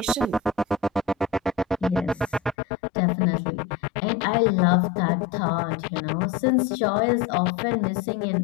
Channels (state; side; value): drops out; right; at 2.6 s